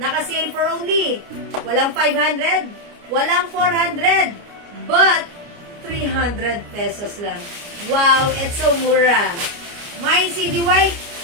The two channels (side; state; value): left; late; 29 ms